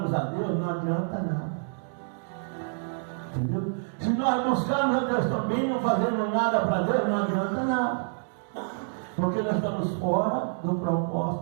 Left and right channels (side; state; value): left; silent; digital silence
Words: a Deus, não adianta nada. Entendeu? Se nós buscarmos a Deus também, não fazemos nada para Deus, não adianta nada. Porque nós estamos fora do